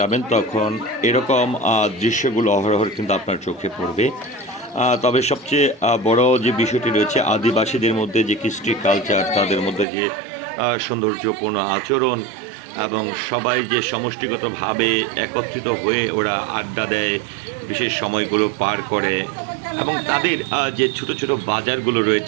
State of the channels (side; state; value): left; drops out; at 9.9 s